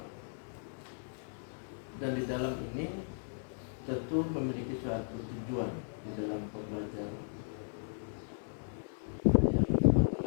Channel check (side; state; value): right; silent; digital silence